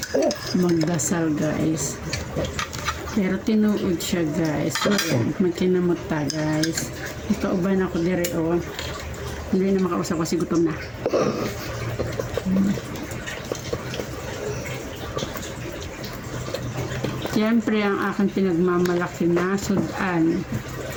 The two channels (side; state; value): both; identical; correlation 1.00